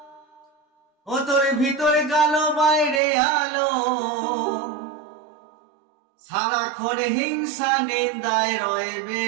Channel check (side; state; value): left; drops out; at 3.0 s